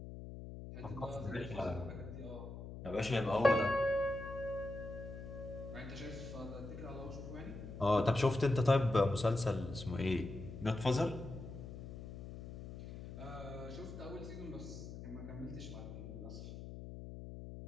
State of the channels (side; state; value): left; noise; hum, 10 dB below the sound